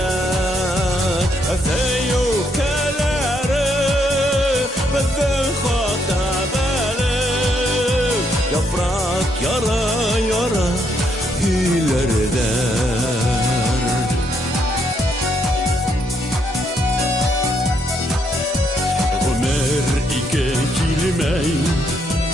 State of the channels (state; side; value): normal; both; correlation 0.75